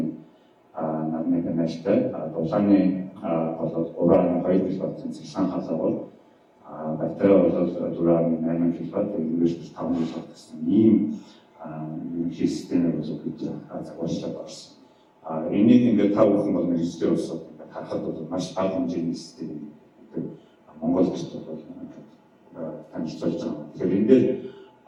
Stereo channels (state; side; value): identical; both; correlation 1.00